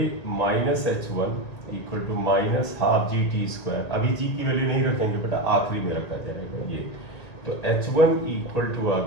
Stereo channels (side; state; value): right; late; 1.9 ms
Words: minus h1 equal to minus half g t square. अभी g की वैल्यू नहीं रखेंगे बेटा, आखिरी में रखा जाएगा ये। तो h1 इक्वल टू आ